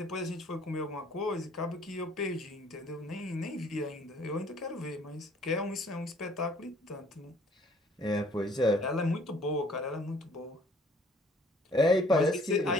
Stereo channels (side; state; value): both; normal; correlation 0.58